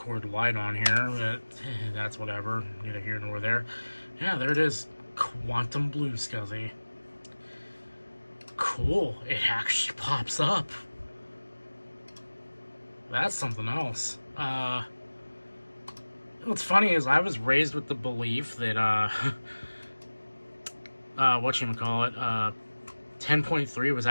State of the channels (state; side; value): inverted; both; correlation -1.00